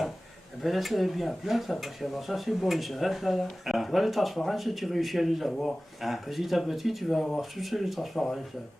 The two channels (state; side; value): normal; both; correlation 0.97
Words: Eh ben là, c'est bien plat, ça, parce que alors, ça, c'est bon, ça, là. Ah. Tu vois, les transparences, tu réussis à les avoir. Ah. Petit à petit, tu vas avoir toutes les transparences.